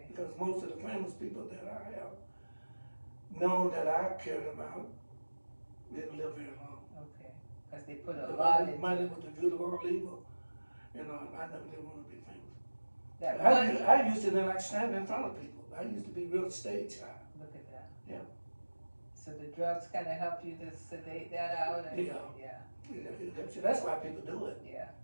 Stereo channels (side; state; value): both; inverted; correlation -1.00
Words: Because most of the famous people that I have known that I cared about didn't live very long. Okay. Because they put a lot into money was the root of all evil. I never did want to be famous. I used to like standing in front of people. I used to be real stage shy. Look at that. Yeah. So the drugs kind of help you to sedate that out? And, yeah. That's why people do it. Yeah.